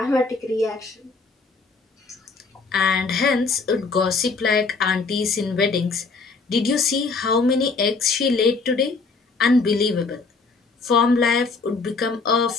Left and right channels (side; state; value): right; quieter; 4.2 dB